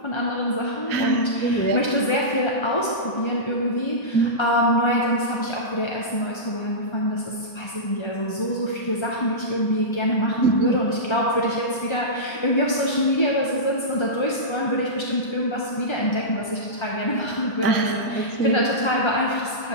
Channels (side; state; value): right; late; 1.3 ms